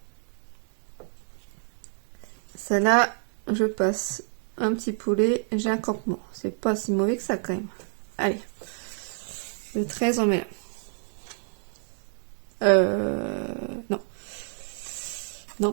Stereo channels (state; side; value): silent; left; 59 dB below the other